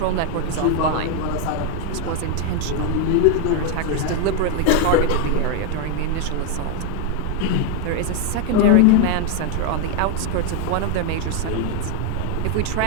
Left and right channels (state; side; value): different; both; correlation 0.01